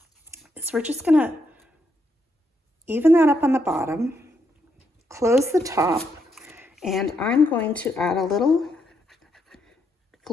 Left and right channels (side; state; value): both; normal; correlation 0.78